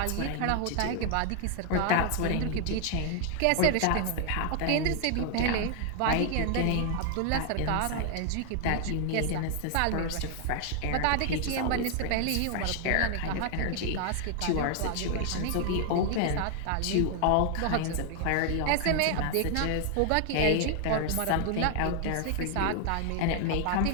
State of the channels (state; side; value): different; both; correlation 0.00